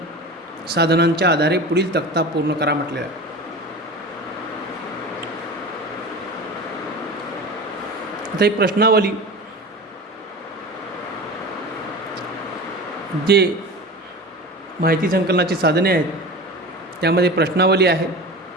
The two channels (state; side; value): normal; both; correlation 0.32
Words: साधनांच्या आधारे पुढील तक्ता पूर्ण करा म्हटलेला आहे. आता ही प्रश्नावली जे माहिती संकलनाची साधने आहेत त्यामध्ये प्रश्नावली आहे,